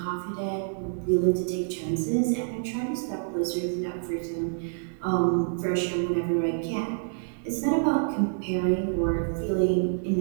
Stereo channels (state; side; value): silent; left; digital silence